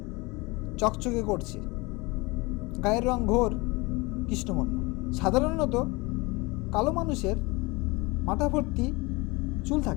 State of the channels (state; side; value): quieter; right; 24.7 dB